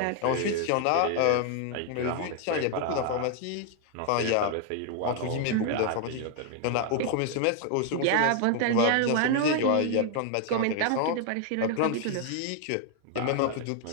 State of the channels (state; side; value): different; both; correlation 0.00